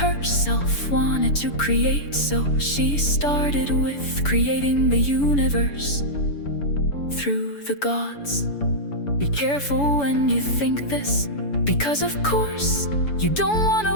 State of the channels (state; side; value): late; right; 7.0 ms